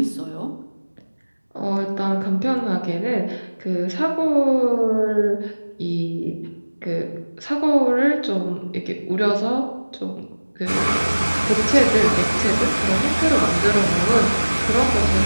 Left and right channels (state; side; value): inverted; both; correlation -1.00